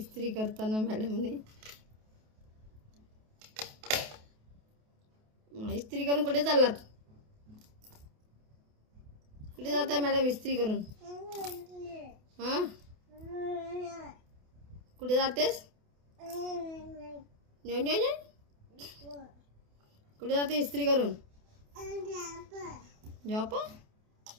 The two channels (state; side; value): late; left; 28 ms